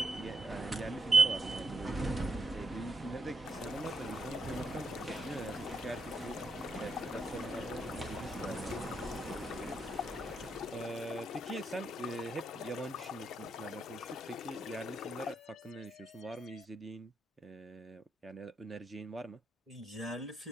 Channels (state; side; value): normal; both; correlation 0.81